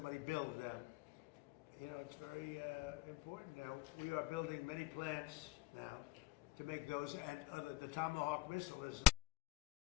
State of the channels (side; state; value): right; quieter; 17.0 dB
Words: build them. You know, it's very important now. We are building many plants now to make those, and the Tomahawk missile is